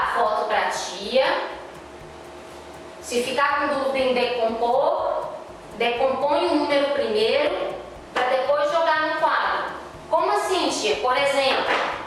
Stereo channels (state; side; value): identical; both; correlation 1.00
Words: a foto para a tia. Se ficar com dúvida em decompor, decompõe o número primeiro para depois jogar no quadro. Como assim, tia? Por exemplo,